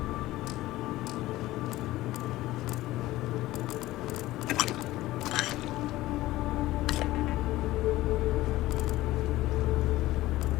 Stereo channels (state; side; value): quieter; right; 16.9 dB